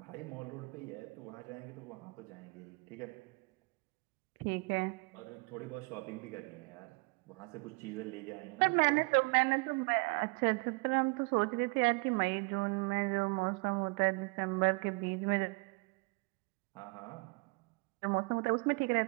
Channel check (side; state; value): left; quieter; 30.5 dB